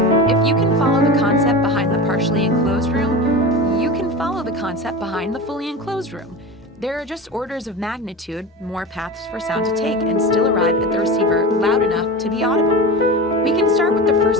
If you can follow the concept behind the partially enclosed room, you can follow the concept behind the fully enclosed room. There are just orders of magnitude more paths for sound to take and still arrive at the receiver loud enough to be audible. We can start with the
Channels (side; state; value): both; normal; correlation 0.28